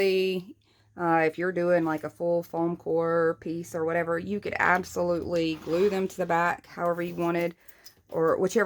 if you're doing like a full foam core piece or whatever, you could absolutely glue them to the back however you wanted, or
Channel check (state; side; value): identical; both; correlation 1.00